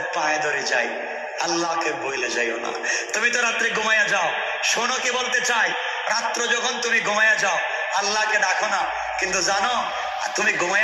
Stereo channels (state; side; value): identical; both; correlation 1.00